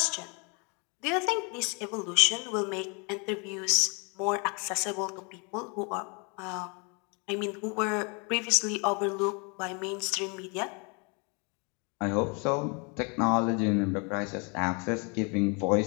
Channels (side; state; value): right; quieter; 33.1 dB